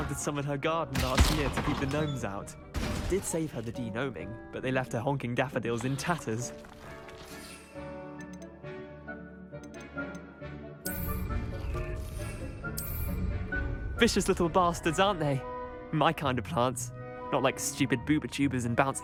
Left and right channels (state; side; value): identical; both; correlation 1.00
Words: some in her garden last year to keep the gnomes out. Did save her the de-gnoming, but they left her honking daffodils in tatters. Vicious little bastards, aren't they? My kind of plants. Not like stupid booba tubers and